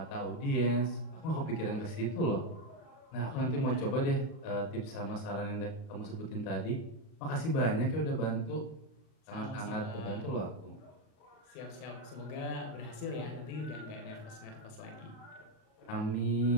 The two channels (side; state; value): right; late; 38 ms